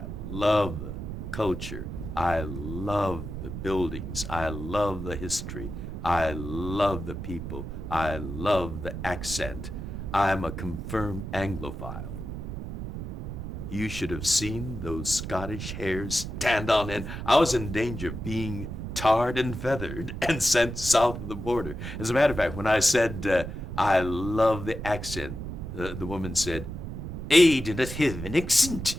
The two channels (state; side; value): noise; right; rumble, 7 dB below the sound